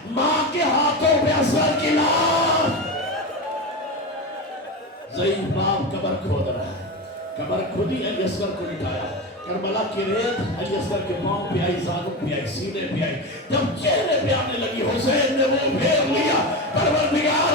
ماں کے ہاتھوں پہ اصغر کی لاش. ضعیف باپ قبر کھود رہا ہے، قبر کھودی علی اصغر کو لٹایا. کربلا کی ریت علی اصغر کے پاؤں پہ آئی، زانوں پہ آئی، سینے پہ آئی. جب چہرے پہ آنے لگی حسین نے وہ پھیر لیا.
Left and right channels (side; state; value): both; normal; correlation 0.20